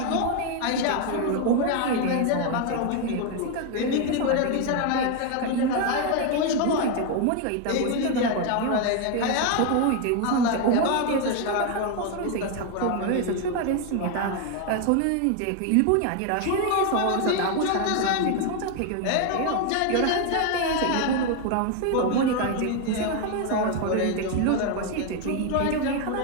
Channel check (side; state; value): both; different; correlation 0.01